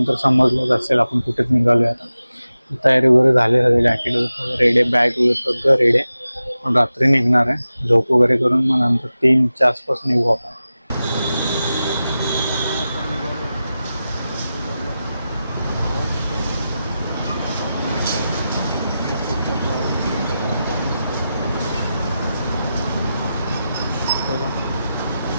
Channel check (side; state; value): both; inverted; correlation -0.93